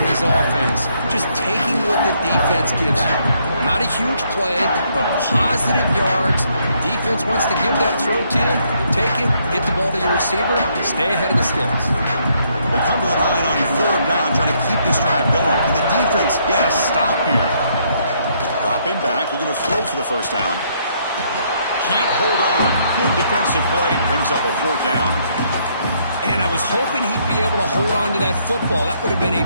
his offense just taking what the defense gives you. Not a huge play, but positive yards. Defense wants to give that throw to you. You take it, get the ball to your receiver, stay ahead of the sticks. They come to the line on 3rd down, trying to keep this drive going. Can the defense get a stop here? Dropping back, looking to throw for the first down. Can't hold on. Good defensive play, brings up a 4th down. And I was hoping he'd be able to hold on to that football. That would have been a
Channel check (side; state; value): both; inverted; correlation -0.71